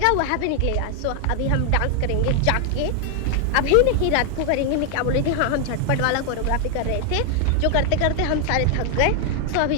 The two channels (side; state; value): both; different; correlation 0.00